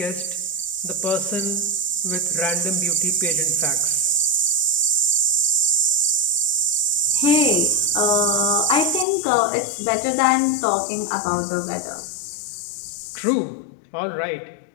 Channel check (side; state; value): right; drops out; at 9.1 s